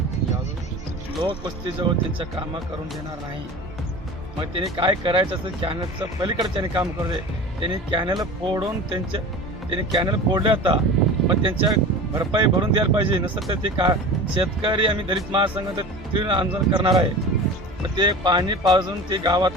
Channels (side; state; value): both; normal; correlation 0.35